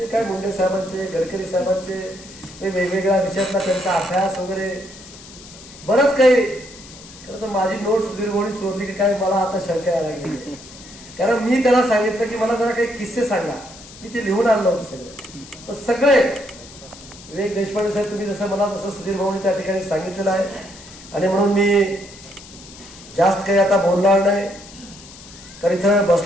काय मुंडे साहेबांचे गडकरी साहेबांचे वेगवेगळ्या विषयातला त्यांचा अभ्यास वगैरे बरंच काही. खरं तर माझी नोट सुधीर भाऊनी चोरली की काय मला आता शंका यायला लागली. कारण मी त्याला सांगितलं की मला जरा काही किस्से सांगा. मी ते लिहून आणलं होतं सगळं. सगळे विवेक देशपांडे साहेब तुम्ही जसं मला तसं सुधीर भाऊनी त्या ठिकाणी सांगितलेलं आहे आणि म्हणून मी जास्त काही आता बोलणार नाही. तर इथं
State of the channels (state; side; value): noise; left; hiss, 18 dB below the sound